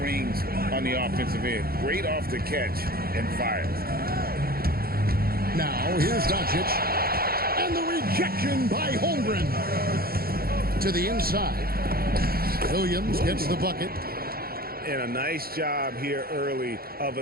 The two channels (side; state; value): left; late; 0.44 ms